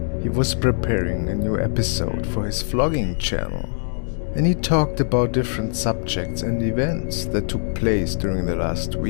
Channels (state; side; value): silent; right; digital silence